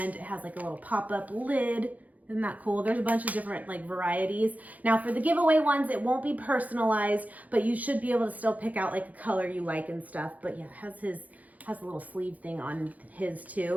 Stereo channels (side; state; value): left; late; 0.076 ms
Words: it has like a little pop-up lid. Isn't that cool? There's a bunch of different like varieties. Now for the giveaway ones, it won't be personalized, but you should be able to still pick out like a color you like and stuff. But yeah, it has a little sleeve thing on his